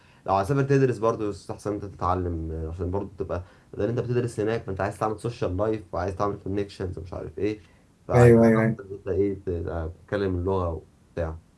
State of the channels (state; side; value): identical; both; correlation 1.00